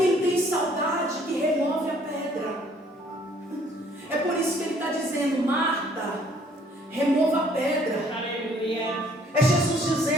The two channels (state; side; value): normal; both; correlation 0.61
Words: tem saudade que remove a pedra. É por isso que ele está dizendo: Marta, remova a pedra. É Jesus